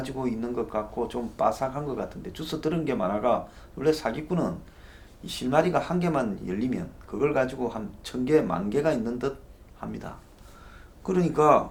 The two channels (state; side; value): identical; both; correlation 1.00